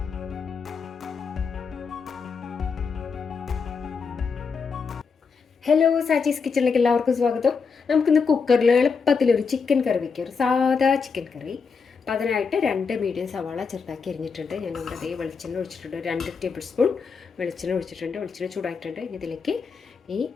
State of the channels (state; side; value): quieter; right; 5.4 dB